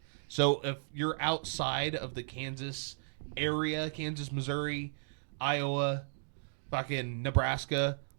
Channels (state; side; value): silent; left; digital silence